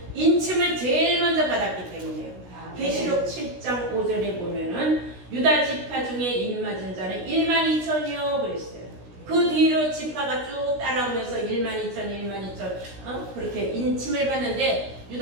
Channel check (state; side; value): late; left; 16 ms